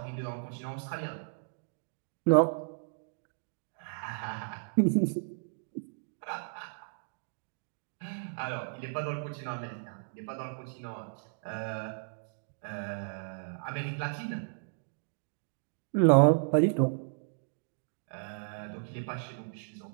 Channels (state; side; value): silent; left; digital silence